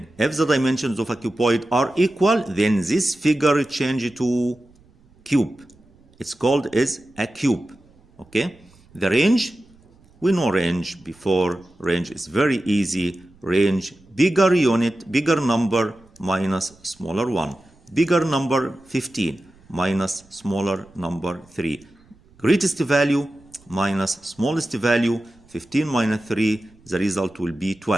if the dimensions of a cuboid are equal, then this figure changes to cube. It's called as a cube. Okay? The range, we know range before. Range is very easy. Range, bigger unit, bigger number minus smaller one. Bigger number 15 minus smaller number 3. Greatest value minus smallest value. 15 minus 3, the result will be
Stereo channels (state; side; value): noise; right; rumble, 29 dB below the sound